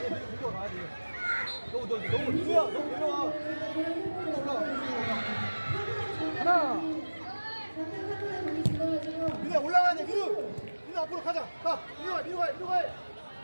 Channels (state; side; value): inverted; both; correlation -1.00